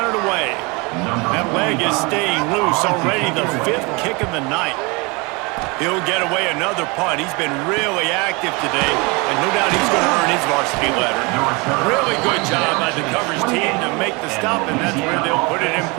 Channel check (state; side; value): quieter; left; 27.7 dB